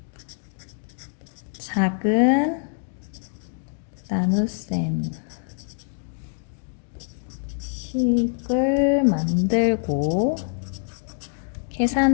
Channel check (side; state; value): right; silent; 59 dB below the other